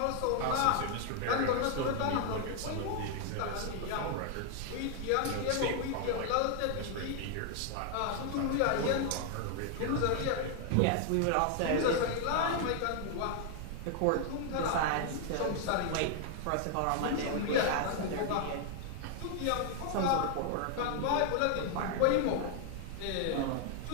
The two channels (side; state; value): both; different; correlation 0.00